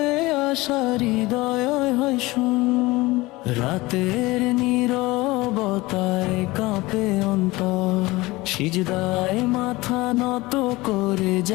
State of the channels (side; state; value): right; quieter; 20.9 dB